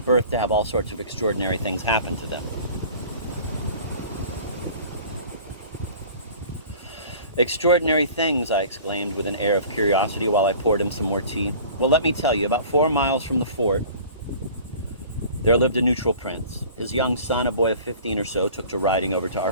to have all sorts of extraordinary things happen to them. Extraordinary things, I exclaimed with an air of curiosity while I poured him some more tea. Well, let me tell you, about 4 miles from the fort, there lived a neutral prince. His young son, a boy of 15 or so, took to riding over to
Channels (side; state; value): both; inverted; correlation -0.44